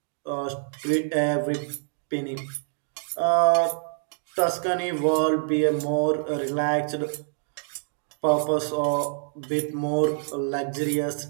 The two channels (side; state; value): left; silent; digital silence